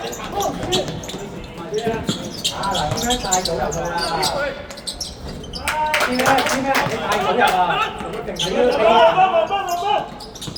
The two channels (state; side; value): identical; both; correlation 1.00